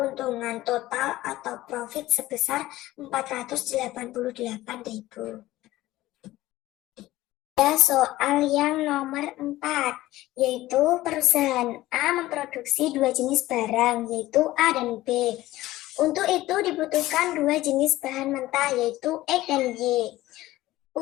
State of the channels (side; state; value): right; quieter; 16.6 dB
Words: total atau profit sebesar 488.000. Soal yang nomor 4, yaitu perusahaan A memproduksi dua jenis barang, yaitu A dan B. Untuk itu dibutuhkan dua jenis bahan mentah, yaitu X dan Y.